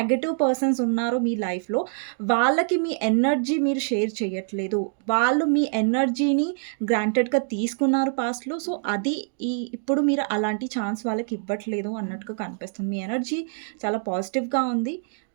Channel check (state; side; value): silent; left; digital silence